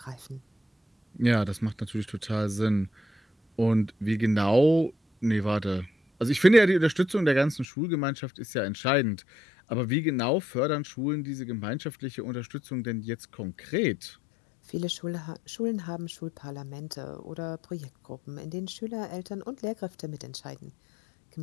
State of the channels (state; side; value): drops out; right; at 7.7 s